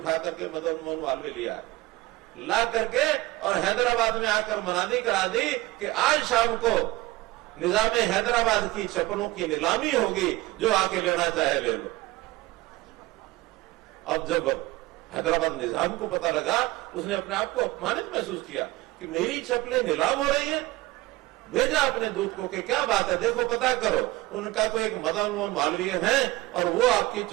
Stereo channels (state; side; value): quieter; left; 19.2 dB